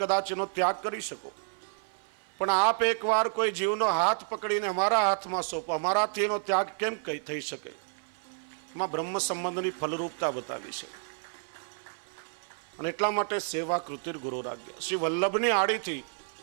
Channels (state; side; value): silent; left; 55 dB below the other